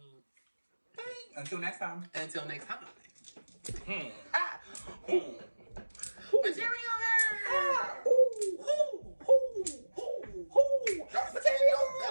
Bye. Until next time. Material Material.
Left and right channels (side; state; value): both; inverted; correlation -1.00